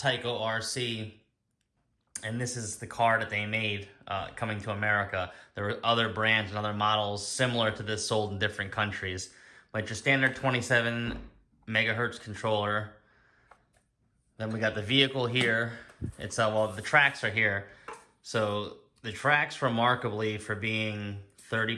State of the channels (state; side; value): identical; both; correlation 1.00